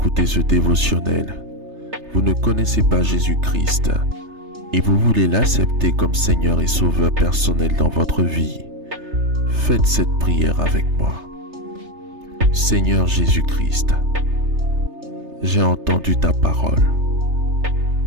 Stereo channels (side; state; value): left; late; 3.3 ms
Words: ce dévotionnel. Vous ne connaissez pas Jésus-Christ et vous voulez l'accepter comme Seigneur et Sauveur personnel dans votre vie. Faites cette prière avec moi. Seigneur Jésus-Christ, j'ai entendu ta parole.